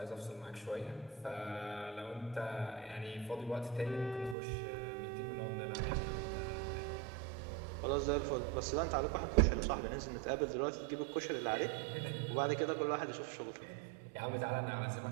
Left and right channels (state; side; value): drops out; left; at 4.4 s